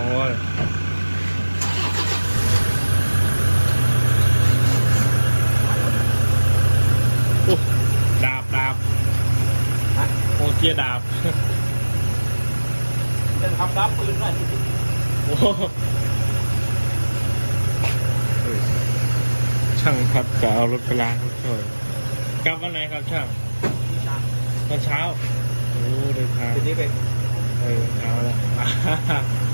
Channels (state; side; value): inverted; both; correlation -1.00